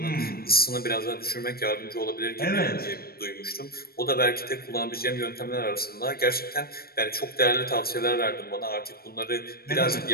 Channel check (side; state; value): right; late; 0.44 ms